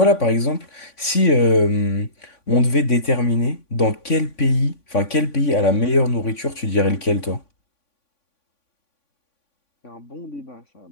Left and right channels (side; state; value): right; late; 3.5 ms